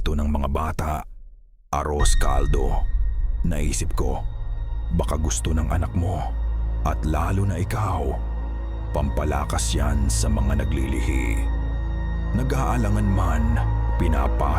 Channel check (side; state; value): both; identical; correlation 1.00